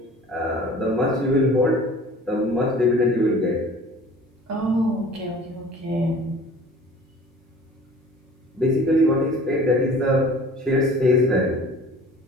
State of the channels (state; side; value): normal; both; correlation 0.46